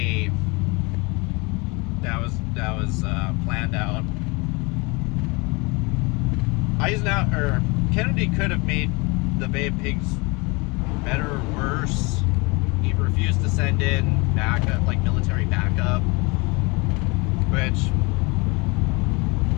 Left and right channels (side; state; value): right; quieter; 27.5 dB